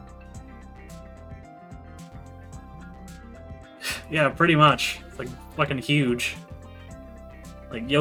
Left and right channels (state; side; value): identical; both; correlation 1.00